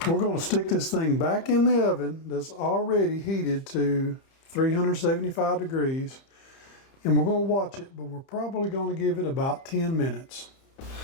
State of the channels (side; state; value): right; late; 30 ms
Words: we're going to stick this thing back in the oven that's already heated to 375 degrees, and we're going to watch it, but we're probably going to give it about 10 minutes.